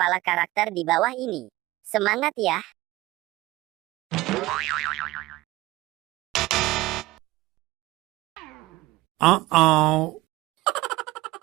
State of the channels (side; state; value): left; quieter; 18.8 dB